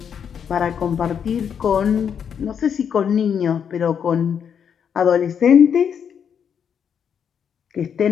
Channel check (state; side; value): quieter; right; 7.7 dB